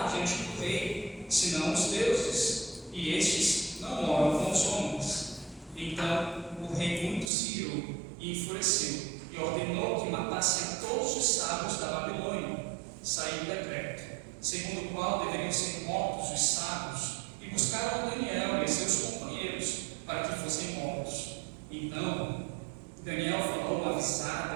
diante do rei, senão os deuses, e estes não moram com os homens. Então o rei muito se irou e enfureceu, e ordenou que matassem todos os sábios da Babilônia. Saiu o decreto, segundo o qual deveriam ser mortos os sábios, e buscaram Daniel e seus companheiros para que fossem mortos. Então Daniel falou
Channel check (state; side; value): drops out; left; at 7.3 s